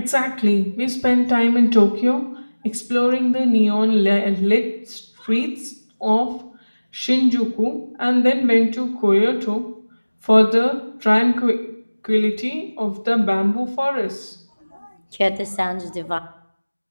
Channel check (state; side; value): inverted; both; correlation -1.00